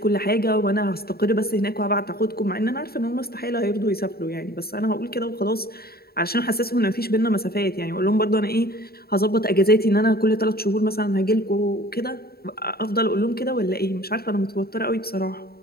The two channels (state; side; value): late; right; 0.45 ms